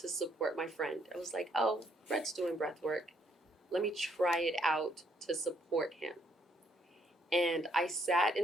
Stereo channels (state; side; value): normal; both; correlation 0.70